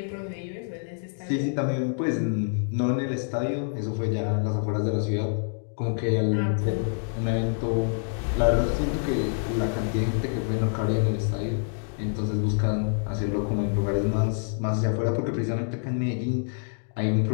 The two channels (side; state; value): right; silent; 59 dB below the other